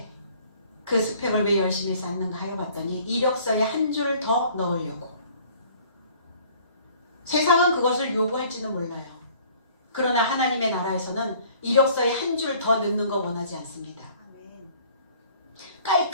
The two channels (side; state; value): both; inverted; correlation -0.55